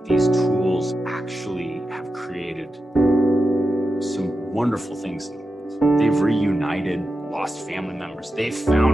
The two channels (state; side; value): normal; both; correlation 0.90